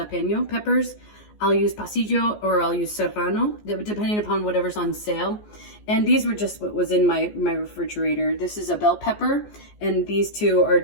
peppers. I'll use pasillo or I'll use serrano, depending upon whatever's on sale. And these were just what was in my refrigerator. This is a bell pepper, and these two are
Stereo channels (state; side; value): late; right; 14 ms